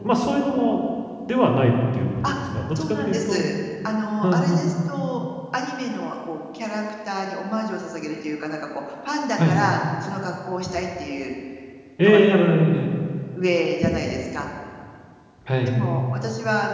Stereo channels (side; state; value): both; identical; correlation 1.00